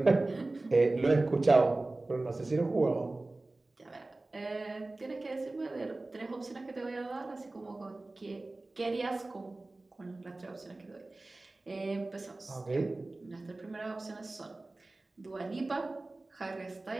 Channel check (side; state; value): left; quieter; 3.0 dB